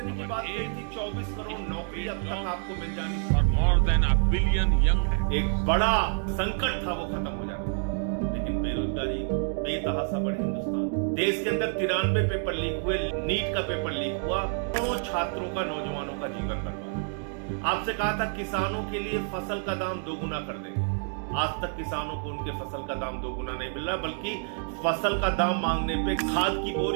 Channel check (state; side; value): silent; left; 59 dB below the other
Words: की बात कही थी, 24 करोड़ नौकरी अब तक आपको मिल जानी थी। More than a billion young. एक बड़ा संकट था, वो खत्म हो जाना था। लेकिन बेरोजगारी बेतहाशा बढ़ी हिंदुस्तान। देश के अंदर 93 पेपर लीक हुए, नीट का पेपर लीक हुआ, करोड़ों छात्रों का, नौजवानों का जीवन बर्बाद। आपसे कहा था किसानों के लिए फसल का दाम 2 गुना कर देंगे। आज तक किसानों को उनके फसल का दाम 2 गुना नहीं मिल रहा, बल्कि फसल का दाम मांगने पे, खाद की